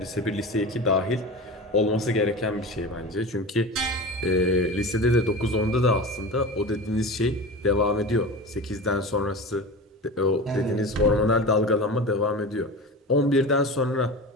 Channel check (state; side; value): normal; both; correlation 0.30